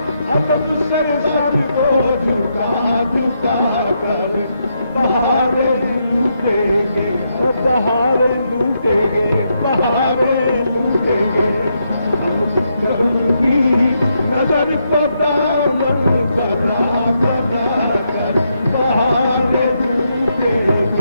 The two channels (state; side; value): inverted; both; correlation -0.80